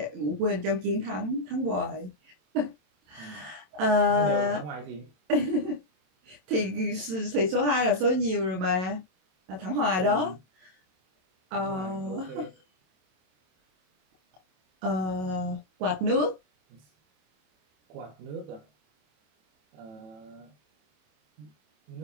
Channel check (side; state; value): left; late; 27 ms